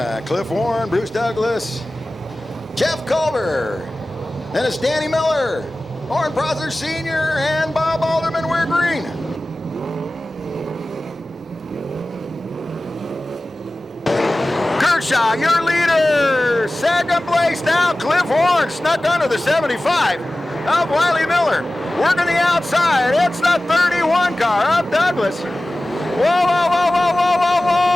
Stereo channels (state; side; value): normal; both; correlation 0.96